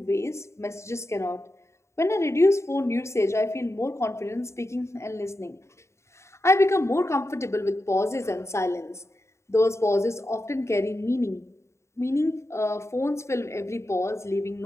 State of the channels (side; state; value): right; late; 0.13 ms